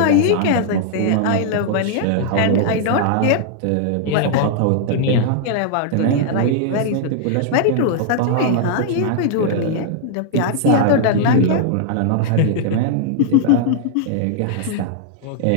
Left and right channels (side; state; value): both; different; correlation -0.01